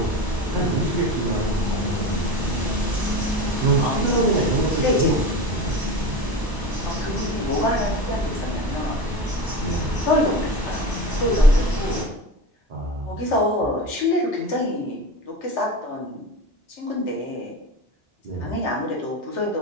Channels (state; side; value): normal; both; correlation 0.28